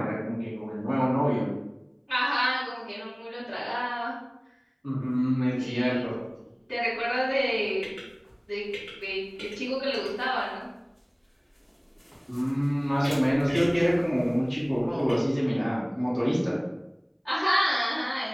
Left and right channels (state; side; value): identical; both; correlation 1.00